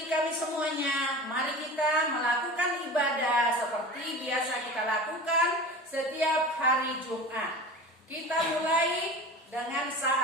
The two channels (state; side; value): normal; both; correlation 0.34